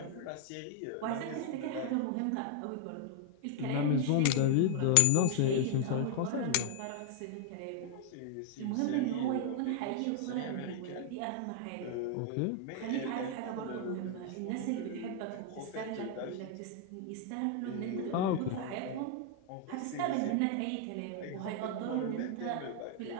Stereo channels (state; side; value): different; both; correlation 0.00